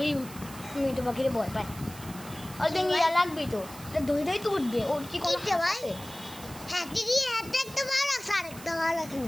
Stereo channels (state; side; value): noise; right; hiss, 16 dB below the sound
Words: মিঠু পাখির ভয় পায়। আর ইয়া লাগবে তো দই তো উঠবে, ওর কি কোনো আছে? হ্যাঁ দিদি হাতে একটা বার রাখ, আরেকটা বার রাখ না।